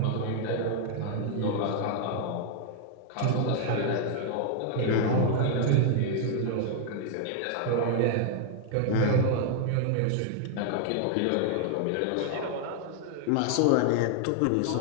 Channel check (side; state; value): both; different; correlation 0.00